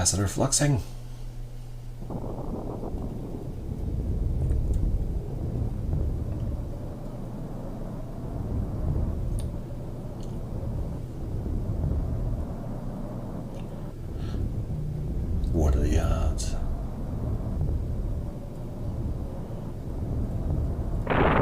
fluxing. What are the odds?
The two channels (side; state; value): both; identical; correlation 1.00